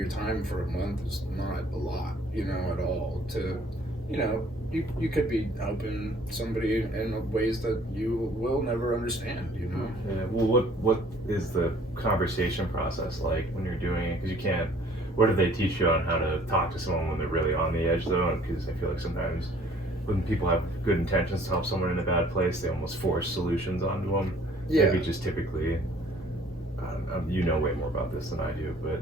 time for a month is not a lot, at all. To, you could be helping somebody in ways that you will never understand, Yeah. Well, what is the conversation process like when you're doing it? Because you can't. What do they teach you on how to talk to someone when they're really on the edge, though? Because I feel like sometimes when people have good intentions to help someone in a bad place, they almost force solutions onto them. Yeah. Maybe just typically, you know way more about this than I do, but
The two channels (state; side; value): normal; both; correlation 0.56